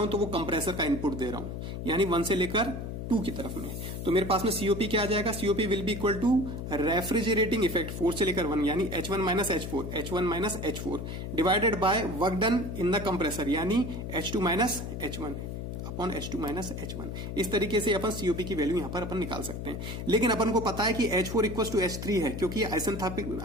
हूं तो वो कंप्रेसर का इनपुट दे रहा हूं, यानी 1 से लेकर 2 की तरफ में। तो मेरे पास में सीओपी क्या आ जाएगा, COP will be equal to refrigerating effect 4 से लेकर 1, यानी H1 minus H4 divided by work done in the compressor, यानी H2 minus H1 upon H2 minus H1। इस तरीके से अपन सीओपी की वैल्यू यहां पर अपन निकाल सकते हैं। लेकिन अपन को पता है कि H4 इक्वल टू H3 है, क्योंकि ये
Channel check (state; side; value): noise; left; hum, 6 dB below the sound